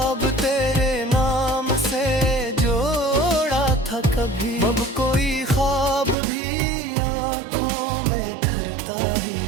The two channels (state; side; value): drops out; left; at 6.2 s